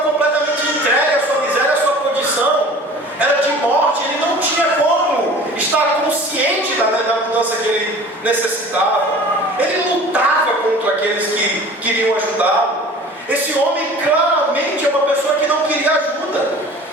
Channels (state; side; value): normal; both; correlation 0.43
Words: completamente entregue à sua miséria, à sua condição, era de morte, ele não tinha como estar consciente da mudança que ele necessitava. Ele lutava contra aqueles que queriam ajudá-lo. Esse homem claramente é uma pessoa que não queria ajuda.